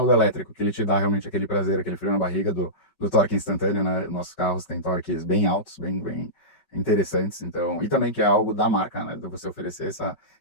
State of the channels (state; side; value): late; right; 5.2 ms